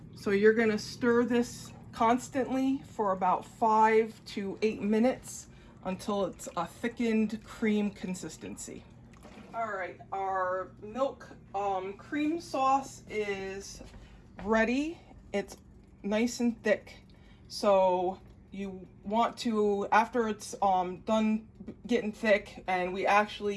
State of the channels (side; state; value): both; identical; correlation 1.00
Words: So you're gonna stir this constantly for about 5 to 8 minutes until it's a thickened cream consistency. All right, our milk cream sauce is ready. It's nice and thick. So you want to, after it's done getting thick, and we